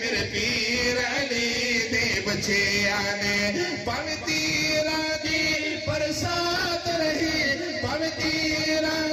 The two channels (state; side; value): identical; both; correlation 1.00